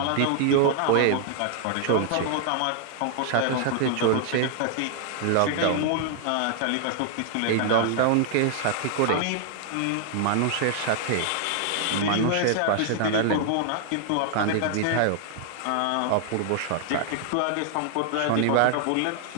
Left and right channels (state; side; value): different; both; correlation -0.01